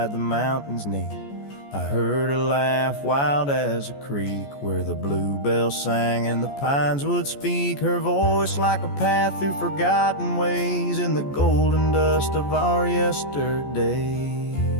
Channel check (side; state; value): right; late; 14 ms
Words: the mountains neath. I heard her laugh wild as a creek, where the bluebell sang and the pines would speak. Her voice like a path through forgotten ways, in the golden dust of our yesterdays.